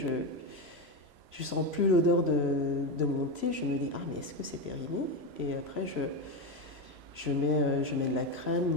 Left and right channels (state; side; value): late; left; 3.0 ms